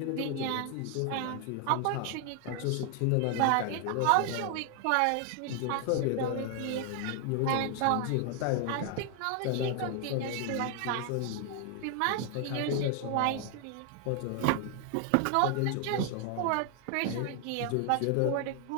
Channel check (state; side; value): different; both; correlation 0.00